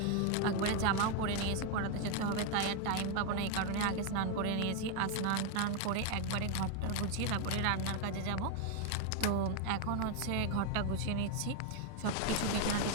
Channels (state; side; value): different; both; correlation 0.01